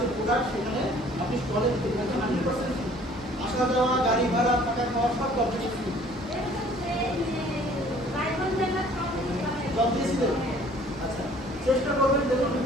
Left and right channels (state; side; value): normal; both; correlation 0.54